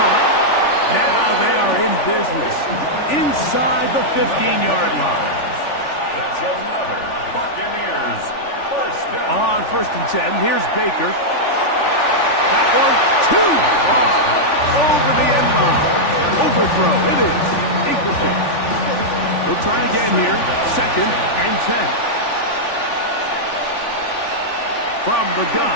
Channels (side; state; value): right; late; 3.4 ms